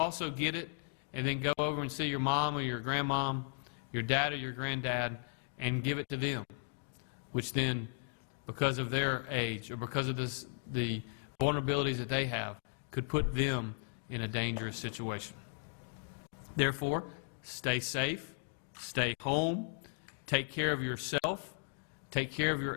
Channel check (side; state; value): right; silent; digital silence